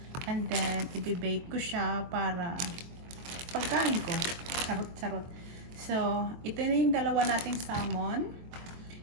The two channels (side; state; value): left; late; 23 ms